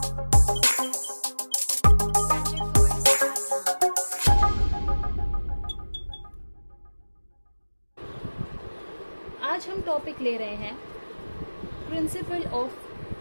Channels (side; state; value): both; inverted; correlation -1.00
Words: आज हम टॉपिक ले रहे हैं प्रिंसिपल ऑफ